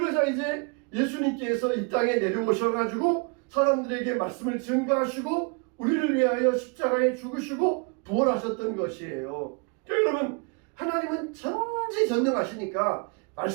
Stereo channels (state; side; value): quieter; left; 34.6 dB